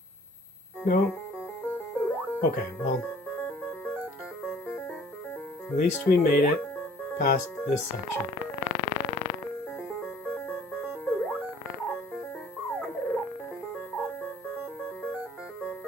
No. Okay, well. At least we made it past this section.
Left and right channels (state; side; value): normal; both; correlation 0.54